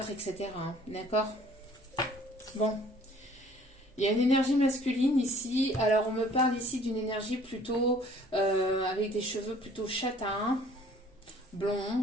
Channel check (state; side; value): normal; both; correlation 0.54